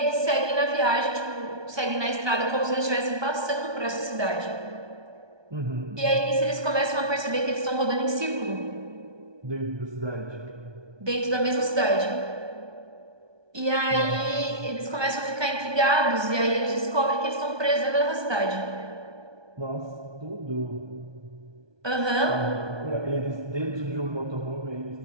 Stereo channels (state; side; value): late; left; 1.2 ms